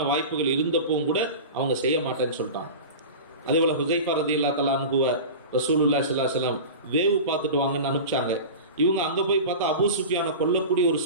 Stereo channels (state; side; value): inverted; both; correlation -0.30